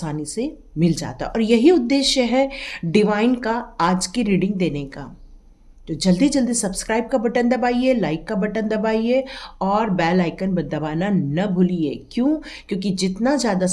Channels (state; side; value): identical; both; correlation 1.00